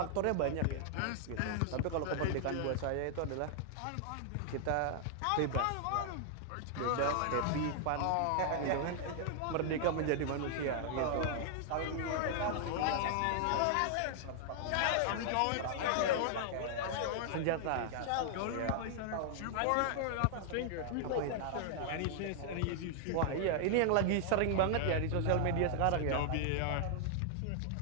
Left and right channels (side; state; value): both; different; correlation -0.01